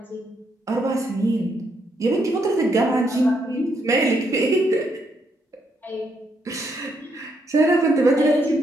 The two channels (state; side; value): normal; both; correlation 0.76